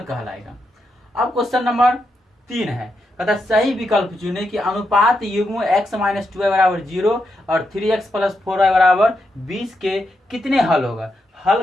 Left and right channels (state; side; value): normal; both; correlation 0.83